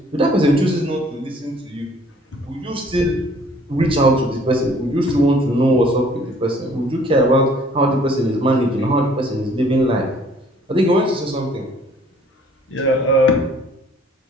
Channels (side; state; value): both; normal; correlation 0.57